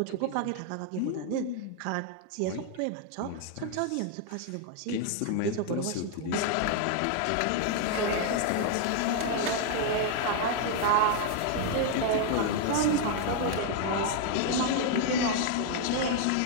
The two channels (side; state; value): both; different; correlation 0.00